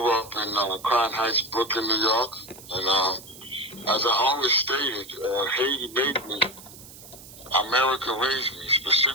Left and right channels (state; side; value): noise; right; hiss, 18 dB below the sound